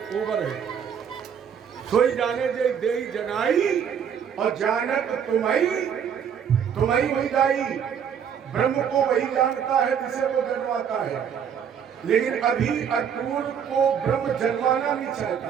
सोई जाने दे देई जनाई और जानत तुम्हारी वही जाई। ब्रह्म को वही जानता है जिसे वो जन्माता है, लेकिन अभी अक्रूर को ब्रह्म जन्माना नहीं चाहता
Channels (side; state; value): left; quieter; 7.9 dB